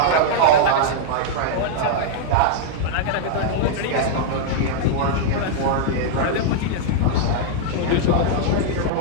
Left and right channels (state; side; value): different; both; correlation -0.01